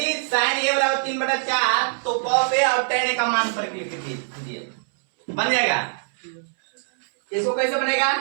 sin a बराबर 3/4 तो cos a और tan a का मान पर क्लिक कीजिए, बन जाएगा। इसको कैसे बनेगा?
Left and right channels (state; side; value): silent; left; 63 dB below the other